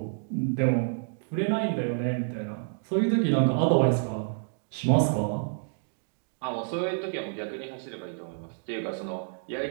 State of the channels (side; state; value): left; silent; digital silence